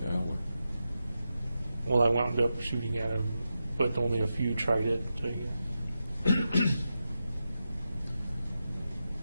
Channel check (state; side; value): inverted; both; correlation -0.89